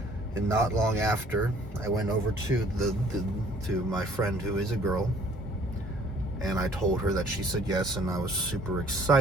And not long after, I went over to to my friend who is a girl, and I told her that she said yes, and I was super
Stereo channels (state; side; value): normal; both; correlation 0.57